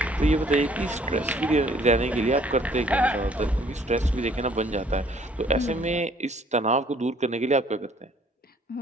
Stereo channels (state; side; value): normal; both; correlation 0.60